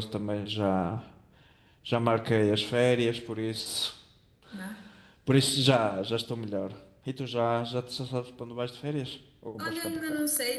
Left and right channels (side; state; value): both; identical; correlation 1.00